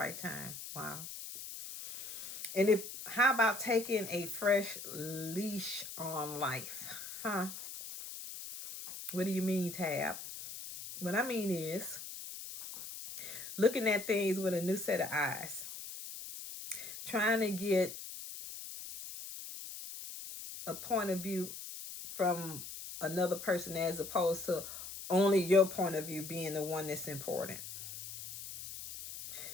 time. Wow. And how about taking a fresh leash on life? Huh? What do you mean, Tab? What I mean is looking at things with a new set of eyes. Trying to get a point of view from another person as opposed to only your point of view being the one that's important.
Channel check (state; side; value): noise; left; hiss, 10 dB below the sound